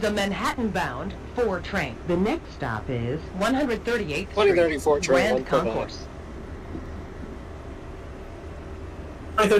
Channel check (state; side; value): identical; both; correlation 1.00